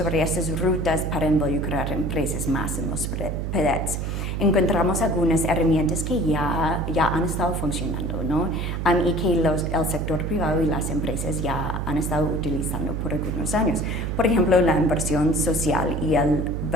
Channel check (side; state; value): right; noise; hum, 2 dB below the sound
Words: estas rutas para involucrar empresas más en los PEDETs. Encontramos algunas herramientas que ya han estado funcionando, ¿no? Y que el sector privado y las empresas ya han estado utilizando por algunos años. Por ejemplo, la inversión social y el